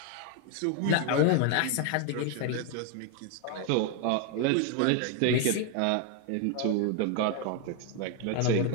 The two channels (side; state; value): both; different; correlation 0.01